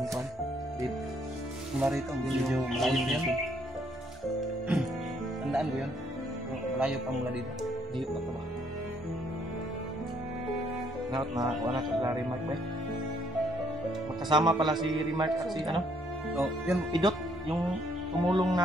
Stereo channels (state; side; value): normal; both; correlation 0.67